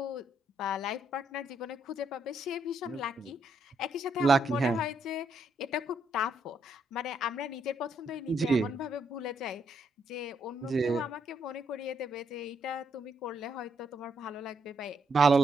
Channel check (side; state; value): both; normal; correlation 0.75